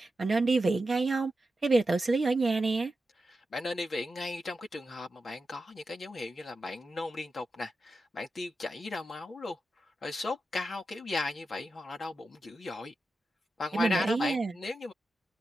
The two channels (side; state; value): both; normal; correlation 0.91